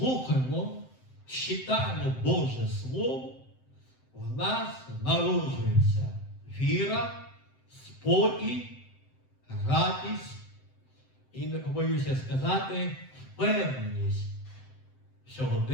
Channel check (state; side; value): late; right; 7.8 ms